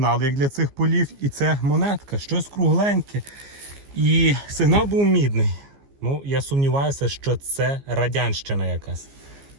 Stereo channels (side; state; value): left; late; 15 ms